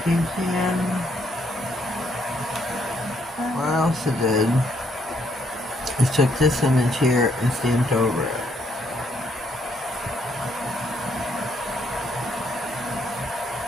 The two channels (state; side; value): normal; both; correlation 0.71